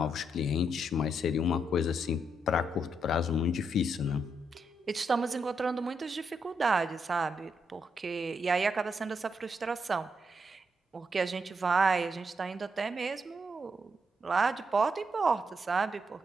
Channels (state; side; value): normal; both; correlation 0.79